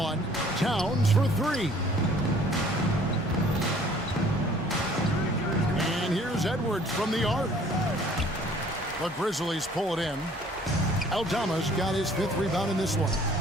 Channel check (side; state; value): both; normal; correlation 0.55